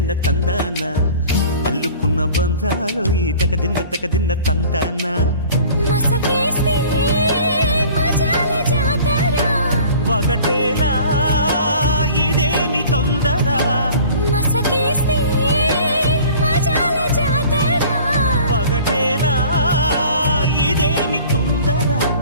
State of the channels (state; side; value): inverted; both; correlation -0.47